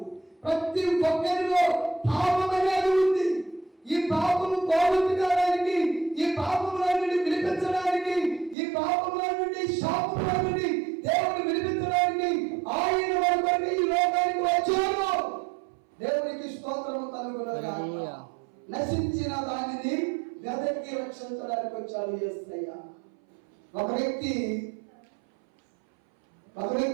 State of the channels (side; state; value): left; drops out; at 8.6 s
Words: ప్రతి ఒక్కరిలో పాపం అనేది ఉంది. ఈ పాపము పోగొట్టుకోవడానికి, ఈ పాపములన్నిటిని విడిపించడానికి, ఈ రక్షించడానికి వచ్చాడు యేసయ్య. ఒక